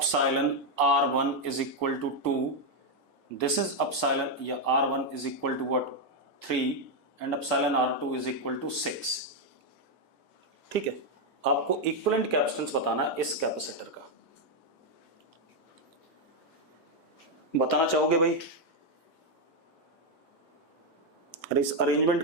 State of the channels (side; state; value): right; late; 13 ms